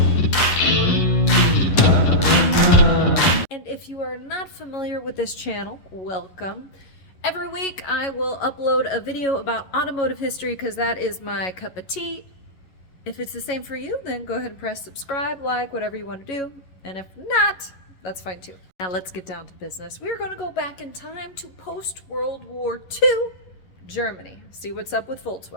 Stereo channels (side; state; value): right; late; 11 ms